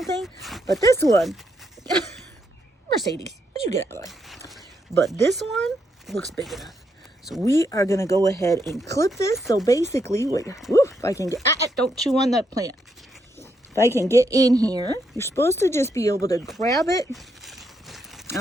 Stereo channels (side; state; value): both; normal; correlation 0.79